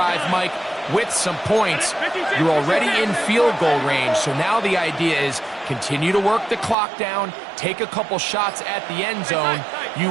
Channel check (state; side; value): drops out; left; at 6.8 s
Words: Mike, with some points. You're already in field goal range, so now the idea is continue to work the clock down, take a couple shots at the end zone. You